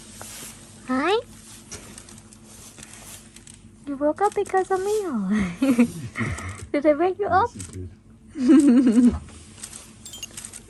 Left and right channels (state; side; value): identical; both; correlation 1.00